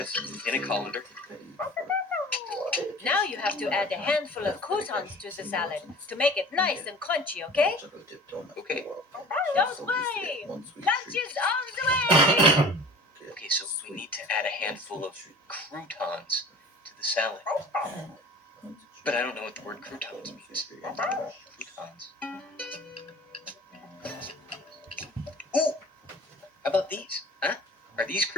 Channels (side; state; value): both; normal; correlation 0.42